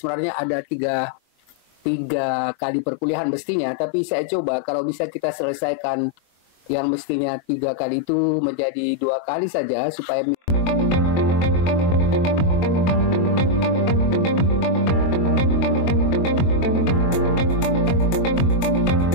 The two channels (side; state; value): right; late; 22 ms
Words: ada tiga kali perkuliahan mestinya, tapi saya coba kalau bisa kita selesaikan yang mestinya 3 kali itu menjadi 2 kali saja supaya